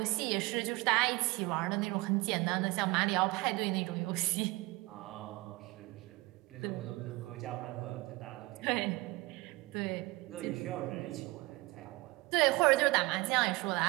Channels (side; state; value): left; quieter; 22.5 dB